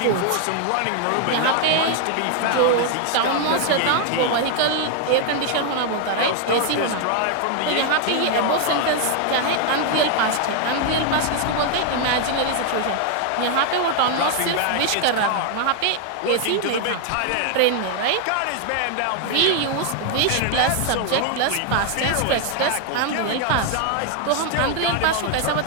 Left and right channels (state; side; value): different; both; correlation 0.00